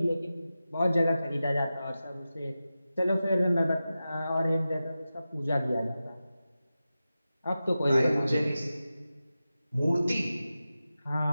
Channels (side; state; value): both; inverted; correlation -0.93